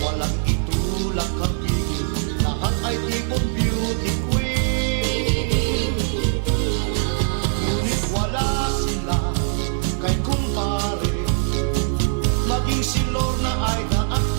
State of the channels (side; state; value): left; silent; 56 dB below the other